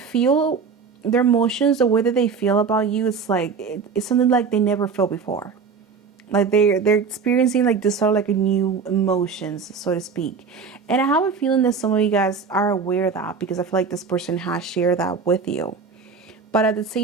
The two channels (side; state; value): left; quieter; 5.4 dB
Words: their emotions, the way that they feel about you, it's like it's something like they never felt before. Like they're experiencing like this sort of like a new emotions, so to speak. And I have a feeling that some of you guys are aware of that, because I feel like this person has shared that with you. But at the